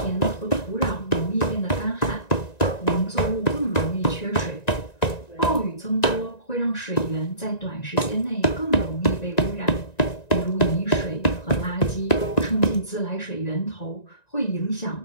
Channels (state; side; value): late; right; 1.9 ms